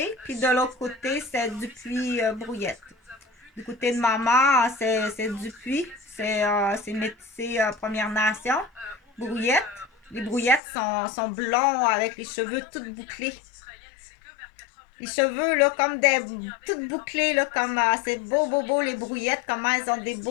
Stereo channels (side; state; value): right; drops out; at 10.6 s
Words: puis de l'autre côté c'est Dupuis Brouillette. Du côté de maman, c'est Dupuis, c'est métissé Première Nation. Brouillette. Les brouillettes sont blonds avec les cheveux tout bouclés. Les cheveux, là, comme des. Toutes bouclés, là, comme. C'est beau, les brouillettes, comment elles ont des